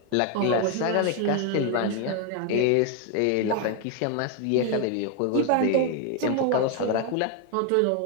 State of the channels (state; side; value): different; both; correlation 0.01